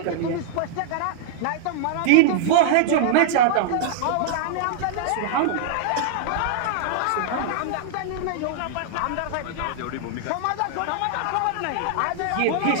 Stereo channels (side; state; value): both; different; correlation -0.01